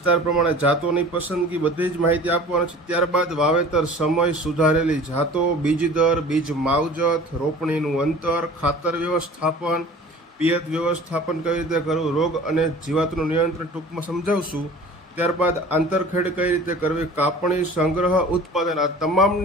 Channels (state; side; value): normal; both; correlation 0.44